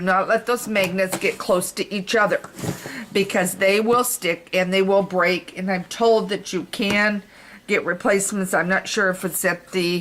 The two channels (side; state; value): both; identical; correlation 1.00